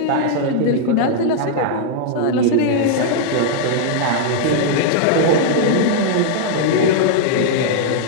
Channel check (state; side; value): different; both; correlation -0.01